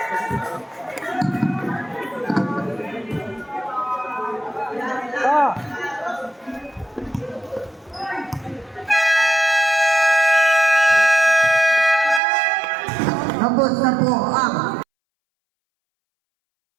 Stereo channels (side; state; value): left; drops out; at 12.2 s